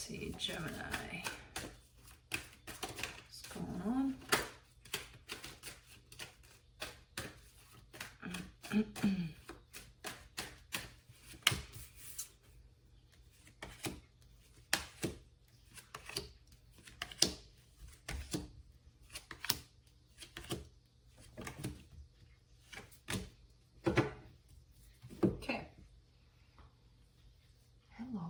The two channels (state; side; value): identical; both; correlation 1.00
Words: Gemini. What's going on? Okay.